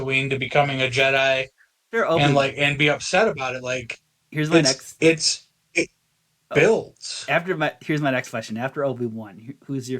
to becoming a Jedi, Sure, and Obi. like and be upset about it. Like Here's my next. it Oh, builds. here's my next question. After Obi Wan, who's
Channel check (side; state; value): both; identical; correlation 1.00